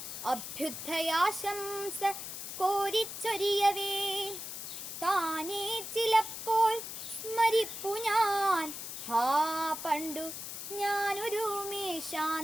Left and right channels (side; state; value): left; noise; hiss, 8 dB below the sound